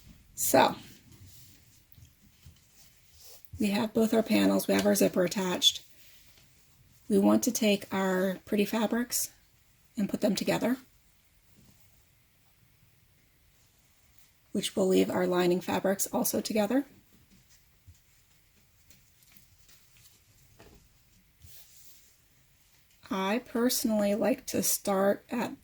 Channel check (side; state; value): both; identical; correlation 1.00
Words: So, we have both our panels, we have our zipper attached. We want to take our pretty fabrics and put them together, which will leave our lining fabrics also together. I personally like to start at